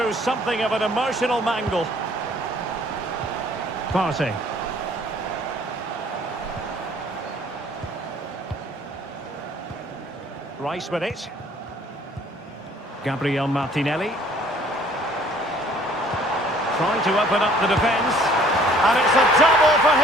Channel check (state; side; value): normal; both; correlation 0.57